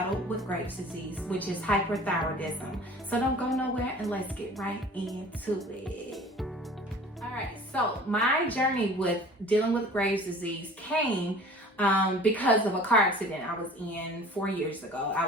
with Graves' disease, which is hyperthyroidism. So don't go nowhere and let's get right into it. All right, so my journey with dealing with Graves' disease came because of a car accident I was in 4 years ago.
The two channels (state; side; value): normal; both; correlation 0.45